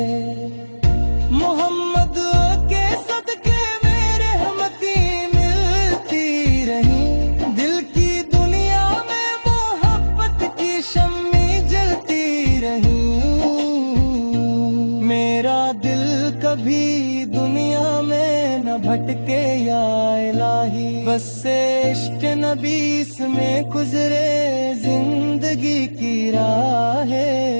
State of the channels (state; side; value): inverted; both; correlation -1.00